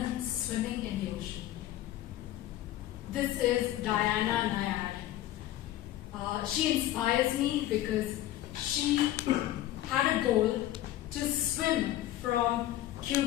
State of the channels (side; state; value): right; quieter; 14.0 dB